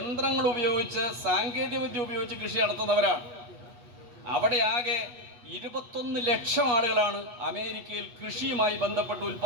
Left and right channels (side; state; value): left; late; 8.3 ms